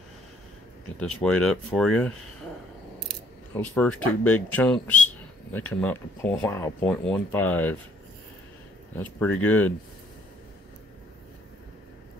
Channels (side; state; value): both; normal; correlation 0.63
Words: get this weighed up for you. Those first two big chunks, they come out to 0.15. That's pretty good.